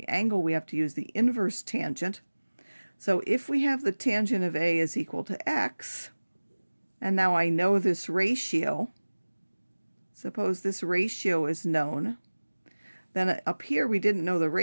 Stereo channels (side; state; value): both; inverted; correlation -1.00